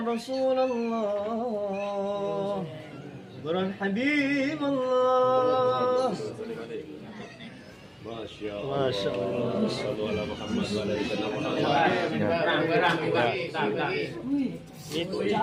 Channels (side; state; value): both; identical; correlation 1.00